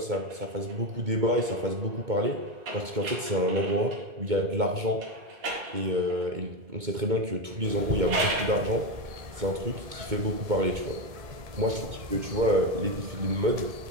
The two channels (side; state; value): left; late; 2.2 ms